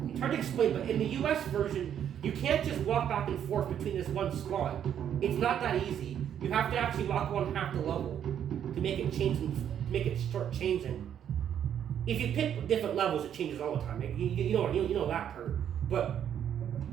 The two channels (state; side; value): quieter; left; 9.4 dB